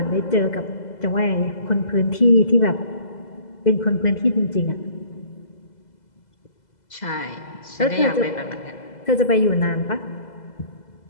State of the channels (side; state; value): right; late; 2.0 ms